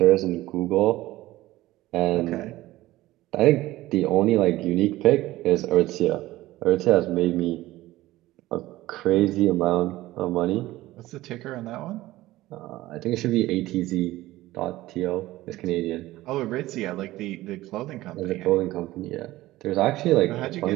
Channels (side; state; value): left; quieter; 16.9 dB